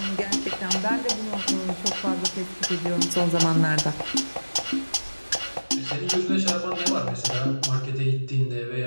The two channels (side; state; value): both; inverted; correlation -1.00